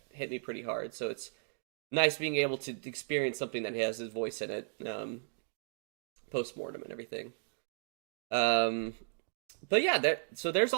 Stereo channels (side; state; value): left; silent; digital silence